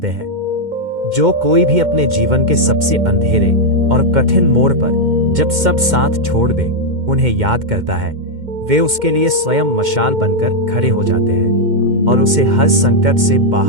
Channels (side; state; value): left; late; 2.1 ms